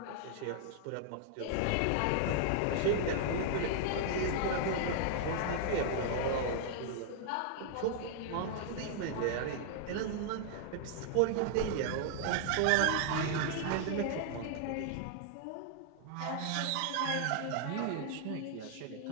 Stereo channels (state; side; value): different; both; correlation -0.01